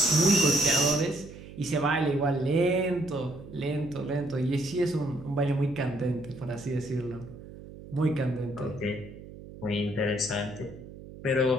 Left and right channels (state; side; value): noise; right; hum, 16 dB below the sound